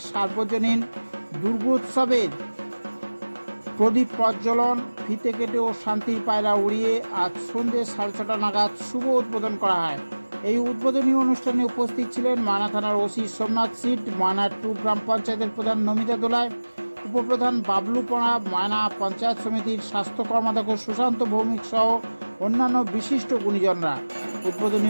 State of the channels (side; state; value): both; inverted; correlation -1.00